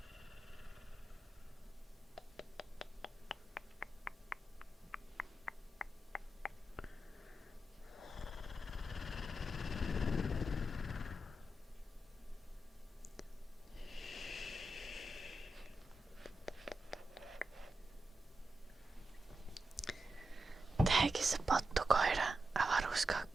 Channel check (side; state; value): both; normal; correlation 0.88